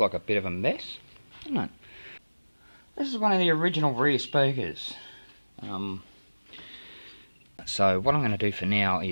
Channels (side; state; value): both; inverted; correlation -1.00